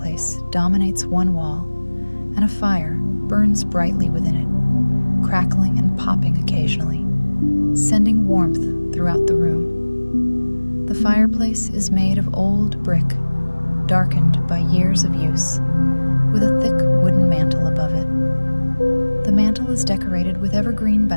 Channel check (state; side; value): inverted; both; correlation -1.00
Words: dominates one wall, and a fire burns brightly within it, crackling and popping occasionally, sending warmth throughout the room. The fireplace is made of old brick, darkened by years of use, with a thick wooden mantel above it. The mantel is decorated with evergreen